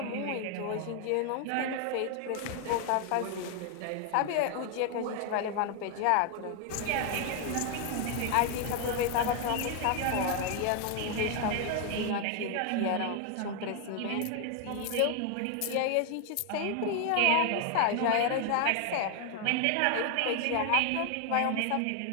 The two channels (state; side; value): different; both; correlation 0.00